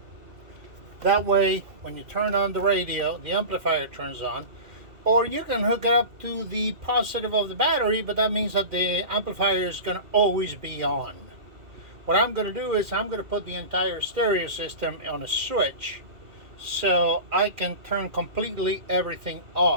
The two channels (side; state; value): left; late; 2.4 ms